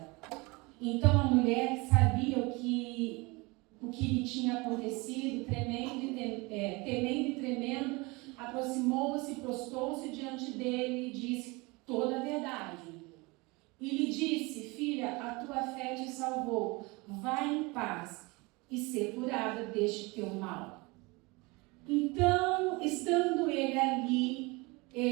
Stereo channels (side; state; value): left; quieter; 25.4 dB